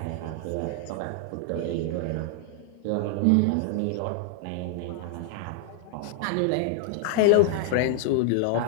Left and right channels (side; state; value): both; different; correlation 0.00